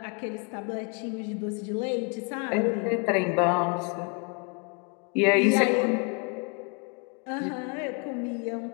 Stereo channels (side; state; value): right; quieter; 35.3 dB